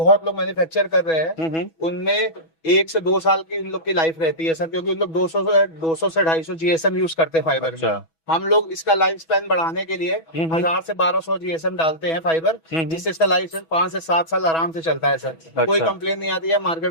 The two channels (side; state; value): right; late; 6.1 ms